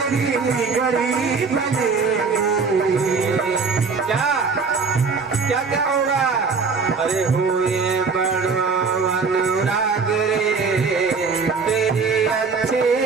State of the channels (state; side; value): quieter; left; 4.9 dB